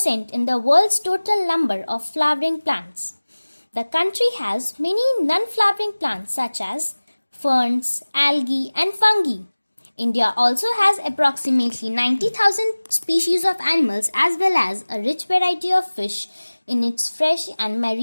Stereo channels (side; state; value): both; inverted; correlation -1.00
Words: in the world's total number of flowering plants. The country has many non-flowering plants such as ferns, algae and fungi. India also has approximately 90,000 species of animals as well as a rich variety of fish in its fresh and